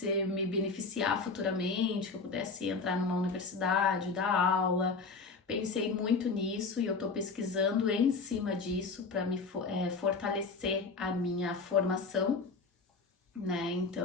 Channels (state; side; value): quieter; right; 4.3 dB